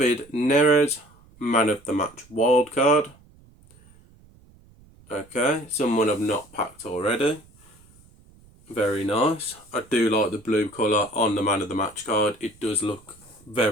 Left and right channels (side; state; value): right; noise; rumble, 27 dB below the sound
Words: Neres Man of the Match wild card. Okay, someone I've not packed already. Very nice. I do like the blue colour on the Man of the Match card. It does look